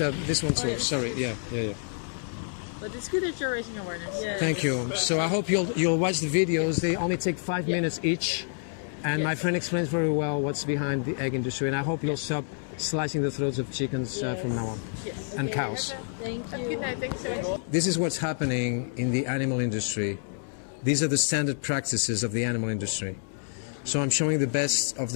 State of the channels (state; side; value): silent; right; 59 dB below the other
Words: one too. yes. Sorry. Yeah. But it's good that you're raising awareness. Yeah. Thank you. So I hope you'll watch the videos. They only take 5 minutes each, and my friend explains very well what's behind the egg industry. And I hope you'll stop slicing the throats of chickens from now on, and cows. Thank you. Good night. Thanks so much. This is what's happening in the animal industry. These are the standard practices of the animal industry. So I'm showing the best of